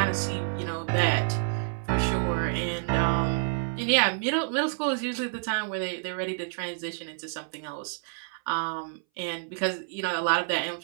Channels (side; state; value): left; silent; 59 dB below the other